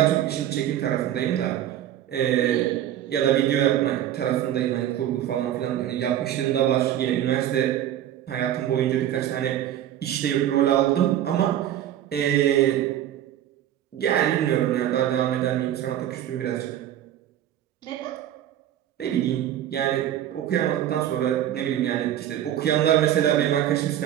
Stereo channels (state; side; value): quieter; left; 11.5 dB